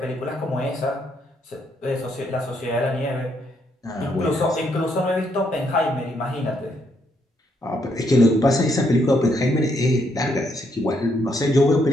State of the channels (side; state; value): both; normal; correlation 0.74